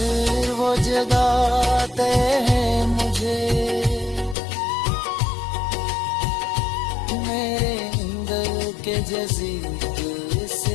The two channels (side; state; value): right; drops out; at 4.4 s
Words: वो जगाते हैं मुझे, मेरे अंदर के जज़ीरे